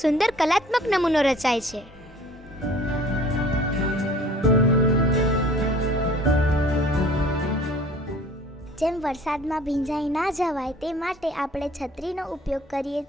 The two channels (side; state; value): both; normal; correlation 0.50